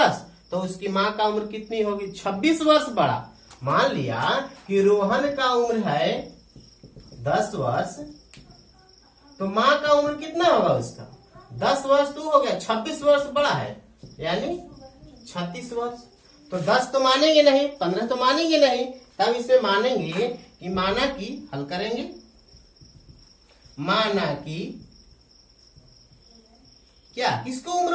तो उसकी मां का उम्र कितनी होगी 26 वर्ष बड़ा। मान लिया कि रोहन का उम्र है 10 वर्ष तो मां का उम्र कितना होगा उसका 10 वर्ष तो हो गया 26 वर्ष बड़ा है यानी 36 वर्ष। तो 10 तो मानेंगे नहीं 15 तो मानेंगे नहीं तब इसे मानेंगे कि माना कि हल करेंगे माना कि क्या किसको उम्र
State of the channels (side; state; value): both; identical; correlation 1.00